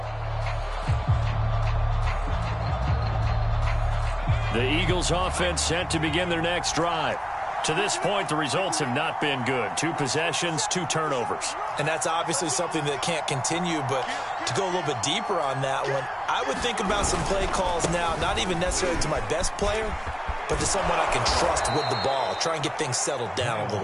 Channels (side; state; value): both; identical; correlation 1.00